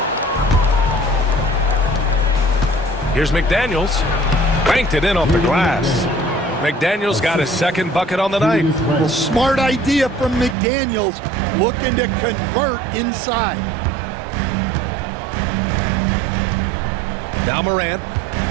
Here's McDaniels. Banked it in off the glass. McDaniels got his 2nd bucket on the night. Well, smart idea from McDaniels, looking to convert inside. Now Morant,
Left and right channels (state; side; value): drops out; left; at 10.6 s